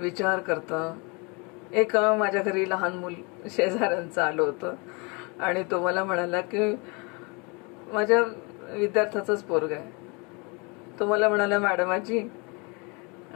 करतं. एक माझ्या घरी लहान मूल शेजाऱ्यांचं आलं होतं आणि तो मला म्हणाला की माझ्या विद्यार्थ्याचंच पोरग आहे. तो मला म्हणाला, मॅडम आजी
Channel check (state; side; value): quieter; right; 30.0 dB